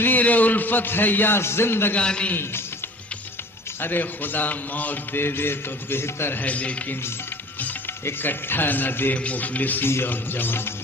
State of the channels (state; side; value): normal; both; correlation 0.45